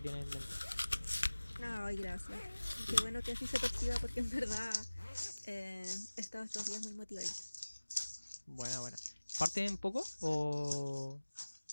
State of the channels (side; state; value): both; inverted; correlation -1.00